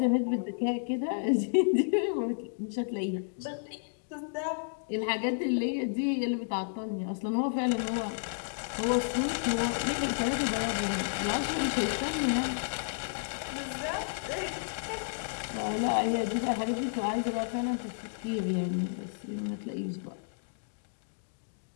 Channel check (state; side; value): silent; right; digital silence